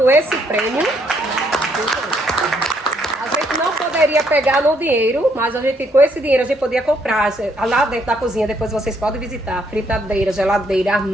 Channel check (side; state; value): both; normal; correlation 0.71